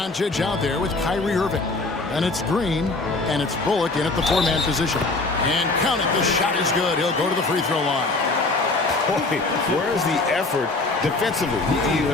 out there with Kyrie Irving. And it's Green, and it's Bullock in at the 4-man position. And count it, the shot is good. He'll go to the free throw line. Boy, where's the effort defensively? You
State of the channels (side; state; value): right; quieter; 3.3 dB